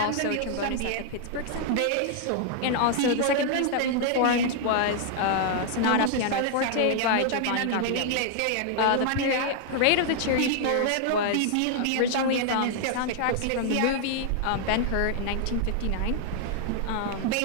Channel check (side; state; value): both; different; correlation 0.00